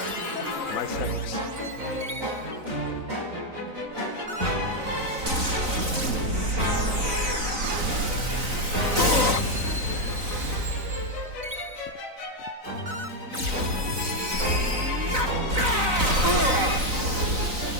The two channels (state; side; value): late; left; 3.9 ms